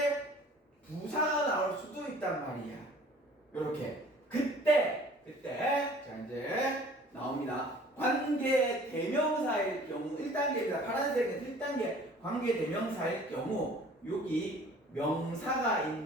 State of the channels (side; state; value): both; normal; correlation 0.50